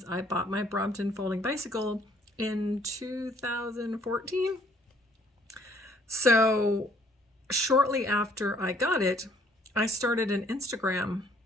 I bought my Brompton folding bicycle in 2014. So shortly after I got it, I started an Instagram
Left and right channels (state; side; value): normal; both; correlation 0.63